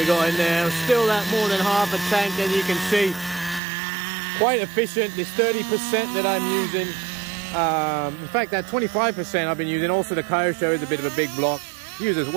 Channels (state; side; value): drops out; left; at 3.6 s